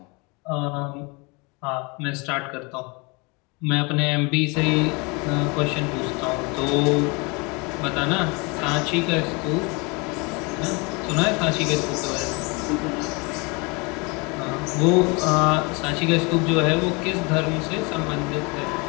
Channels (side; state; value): right; quieter; 28.9 dB